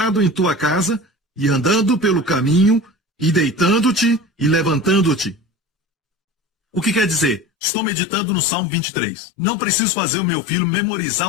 em tua casa, e andando pelo caminho, e deitando-te e levantando-te. O que quer dizer? Estou meditando no Salmo 23. Não preciso fazer o meu filho memorizar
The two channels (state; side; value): drops out; right; at 7.5 s